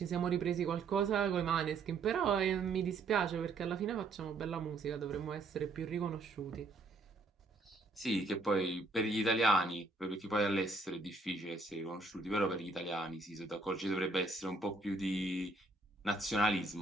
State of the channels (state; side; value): quieter; left; 3.5 dB